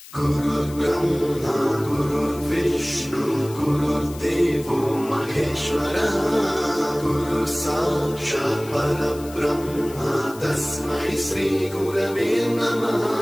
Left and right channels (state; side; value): noise; left; hiss, 18 dB below the sound